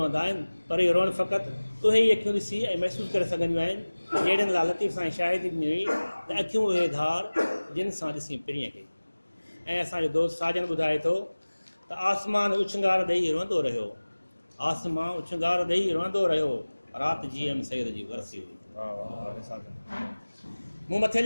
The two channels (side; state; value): both; inverted; correlation -1.00